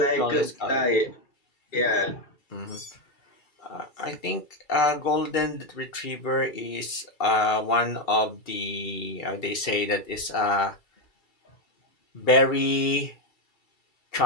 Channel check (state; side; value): late; right; 2.7 ms